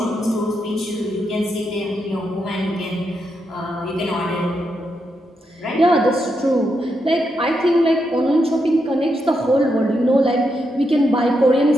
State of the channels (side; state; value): both; normal; correlation 0.83